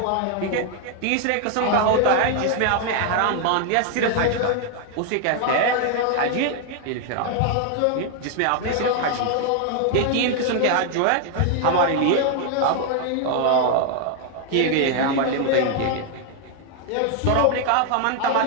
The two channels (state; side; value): different; both; correlation 0.00